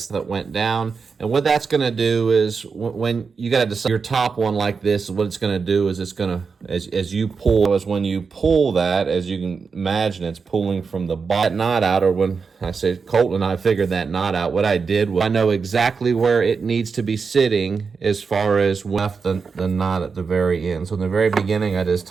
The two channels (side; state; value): left; quieter; 5.2 dB